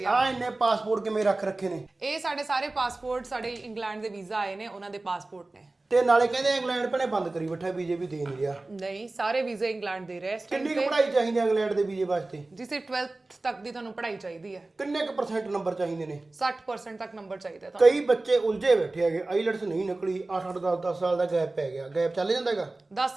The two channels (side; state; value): left; quieter; 3.1 dB